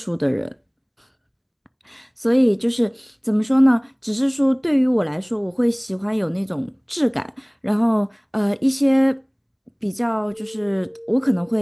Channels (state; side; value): identical; both; correlation 1.00